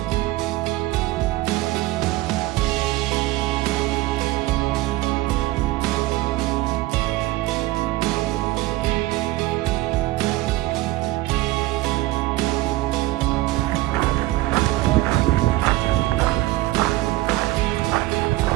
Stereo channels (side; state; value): left; quieter; 18.0 dB